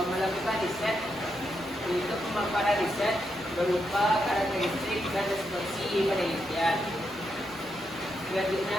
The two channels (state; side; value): noise; left; rumble, 29 dB below the sound